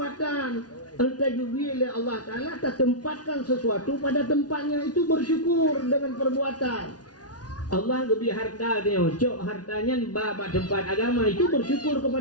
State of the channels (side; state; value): right; late; 0.69 ms